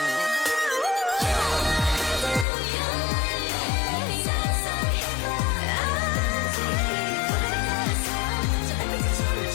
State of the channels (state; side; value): drops out; right; at 2.5 s